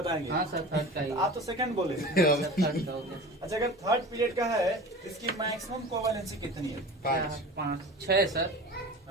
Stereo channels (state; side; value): normal; both; correlation 0.35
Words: हाँ सर थर्ड का ही है। आप तो सेकंड बोले। सर थर्ड का हो गया। अच्छा अगर थर्ड पीरियड का है इसकी मैक्सिमम कोवैलेंसी कितनी है? 5। 5 6 सर।